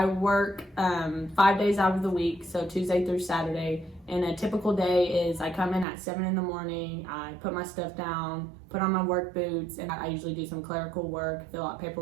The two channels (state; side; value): drops out; left; at 5.9 s